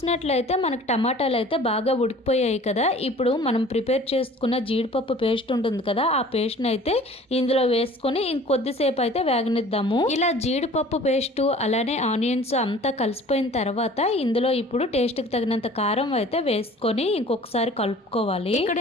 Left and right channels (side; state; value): both; normal; correlation 0.48